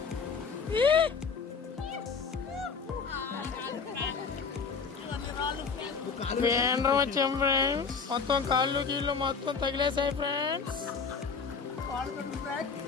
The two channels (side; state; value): right; quieter; 5.5 dB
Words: వేండ్రం వచ్చాం friends. మొత్తం కాళ్ళు కీళ్ళు మొత్తం తగిలేసాయి ఫ్రెండ్స్.